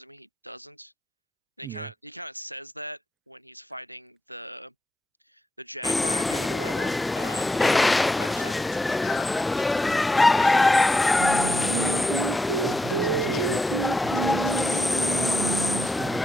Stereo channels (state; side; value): normal; both; correlation 0.84